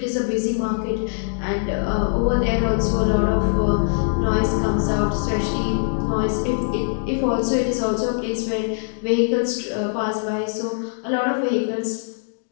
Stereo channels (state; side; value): silent; right; digital silence